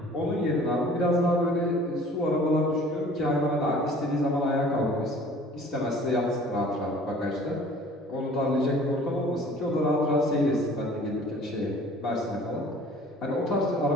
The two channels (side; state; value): both; normal; correlation 0.50